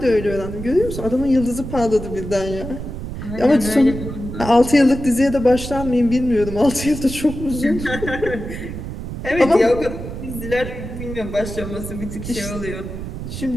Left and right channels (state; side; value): noise; right; rumble, 8 dB below the sound